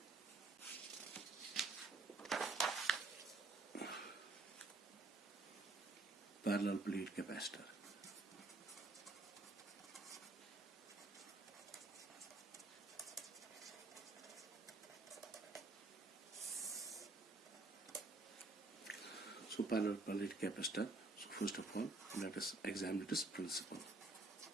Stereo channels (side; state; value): left; quieter; 3.2 dB